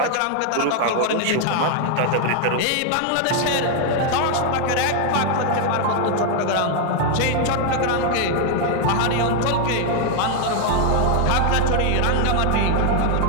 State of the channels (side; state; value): both; different; correlation 0.00